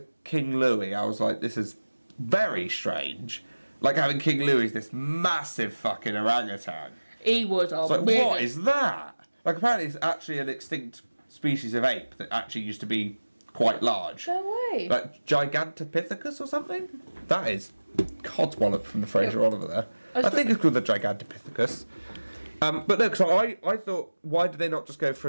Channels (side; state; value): both; inverted; correlation -1.00